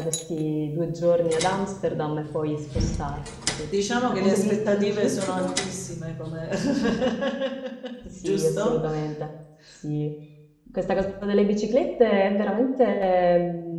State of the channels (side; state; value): both; identical; correlation 1.00